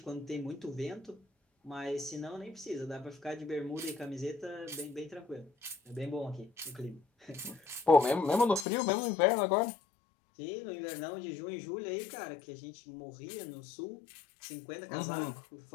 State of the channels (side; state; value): right; drops out; at 8.7 s